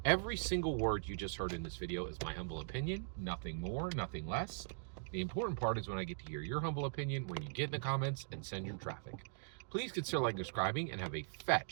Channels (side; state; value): left; silent; digital silence